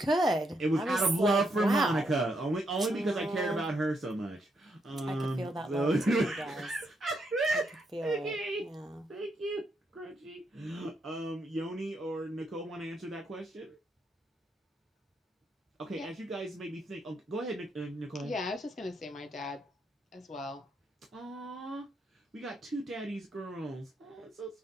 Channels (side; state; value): both; normal; correlation 0.79